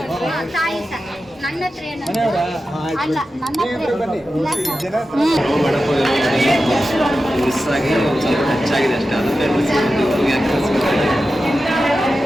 ಸರ್, ನನ್ನ ಹತ್ರ ಅಲ್ಲ, ನನ್ನ ಹತ್ರ ಮಿಸ್ ಆಗಿ ಒಂದು ಸ್ವಲ್ಪ ಹೆಚ್ಚಾಗಿದೆ ಅಷ್ಟೇ.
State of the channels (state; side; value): normal; both; correlation 0.92